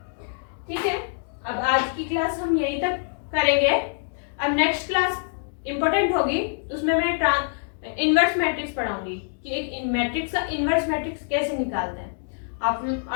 ठीक है, अब आज की क्लास हम यहीं तक करेंगे। अब नेक्स्ट क्लास इंपॉर्टेंट होगी, उसमें मैं इनवर्स मैट्रिक्स पढ़ाऊंगी कि एक मैट्रिक्स का इनवर्स मैट्रिक्स कैसे निकालते हैं।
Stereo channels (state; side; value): silent; right; digital silence